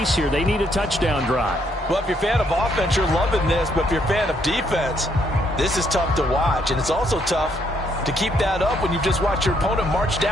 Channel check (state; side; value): normal; both; correlation 0.72